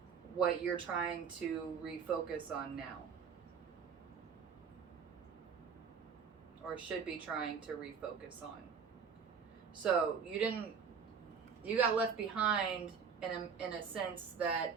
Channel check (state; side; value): quieter; left; 6.4 dB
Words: what you're trying to refocus on now, or should be trying to refocus on. So you got left behind in a sense that